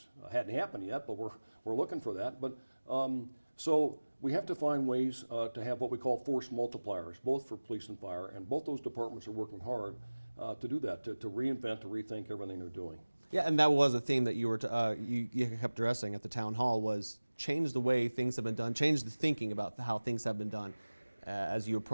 Hadn't happened yet, but we're looking for that. But so we have to find ways to have what we call force multipliers, both for police and fire, and both those departments are working hard to do that, to reinvent, to rethink everything they're doing. Yeah, and that was a theme that you were you kept addressing at the town hall, was change the way things have been done, change the thinking about how things have been done as you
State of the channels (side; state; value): both; inverted; correlation -1.00